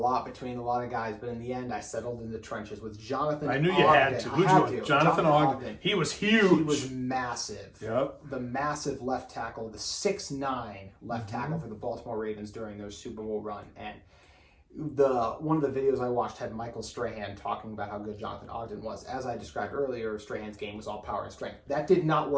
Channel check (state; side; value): identical; both; correlation 1.00